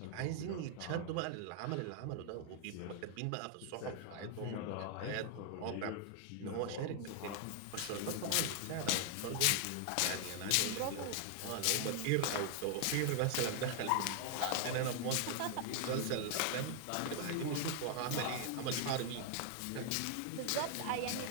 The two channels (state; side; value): different; both; correlation 0.00